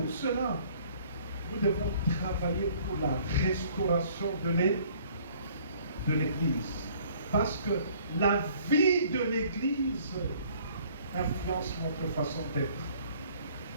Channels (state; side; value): inverted; both; correlation -0.57